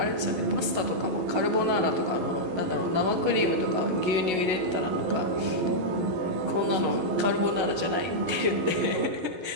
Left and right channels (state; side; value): late; left; 11 ms